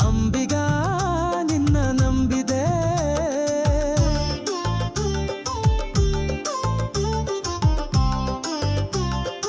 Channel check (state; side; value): identical; both; correlation 1.00